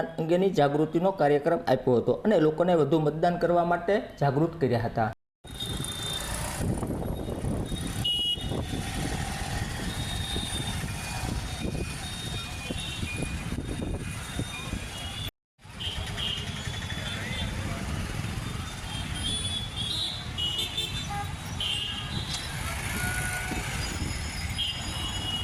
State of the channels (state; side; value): identical; both; correlation 1.00